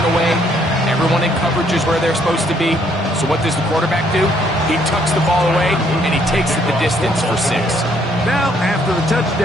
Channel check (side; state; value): both; normal; correlation 0.67